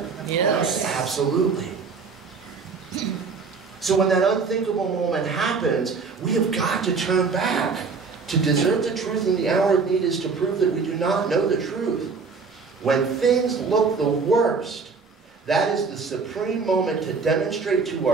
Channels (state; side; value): quieter; left; 4.9 dB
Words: Yes. Absolutely. So when that unthinkable moment happens, we have got to turn back. To desert the truth in the hour of need is to prove that we do not know the truth. When things look the worst, that is the supreme moment to demonstrate to